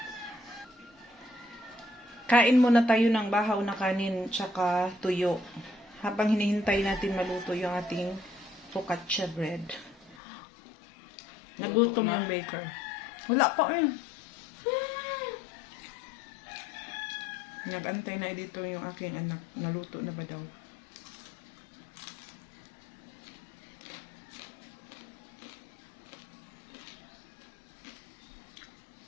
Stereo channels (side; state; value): right; drops out; at 10.2 s